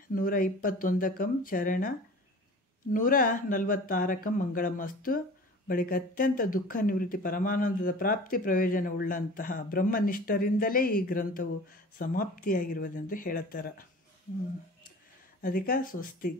121ಕಂ ಚರಣ 146ಕಂ ಮಂಗಳಮಸ್ತು. ಬಳಿಕ ಅತ್ಯಂತ ದುಃಖ ನಿವೃತ್ತಿ ಪರಮಾನಂದದ ಪ್ರಾಪ್ತಿ ಪ್ರಯೋಜನವುಳ್ಳಂತಹ ಬ್ರಹ್ಮನಿಷ್ಠರಿಂದಲೇ ಈ ಗ್ರಂಥವು ಸಮಾಪ್ತಿಯಾಗಿರುವುದೆಂದು ಹೇಳುತ್ತಾರೆ. ಅದಕ್ಕೆ ಸ್ವಸ್ತಿ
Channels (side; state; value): both; normal; correlation 0.41